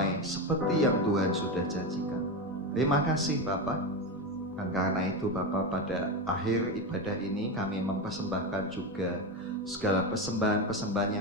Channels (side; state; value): both; normal; correlation 0.16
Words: seperti yang Tuhan sudah janjikan. Terima kasih Bapak. Dan karena itu Bapak, pada akhir ibadah ini kami mempersembahkan juga segala persembahan-persembahan